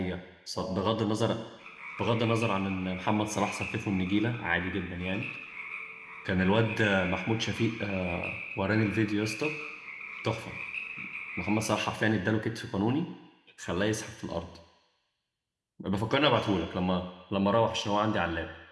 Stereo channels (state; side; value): identical; both; correlation 1.00